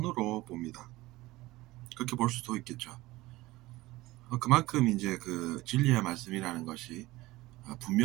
봅니다. 그렇게 볼 수도 있겠죠. 그만큼 이제 그 진리의 말씀이라는 것이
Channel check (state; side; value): quieter; left; 19.0 dB